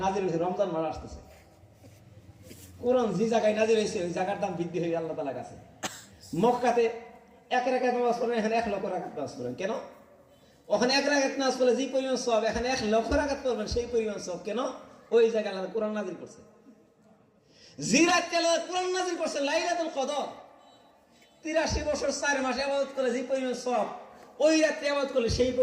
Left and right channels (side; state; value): both; identical; correlation 1.00